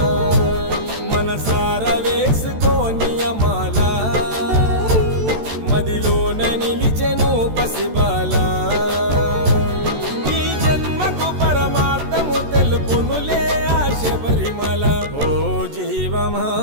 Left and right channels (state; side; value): late; left; 14 ms